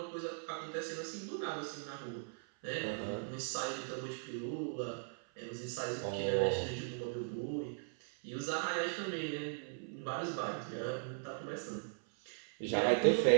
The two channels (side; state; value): left; silent; 52 dB below the other